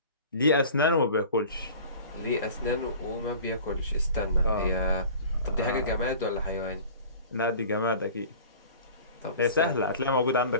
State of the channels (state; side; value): inverted; both; correlation -0.43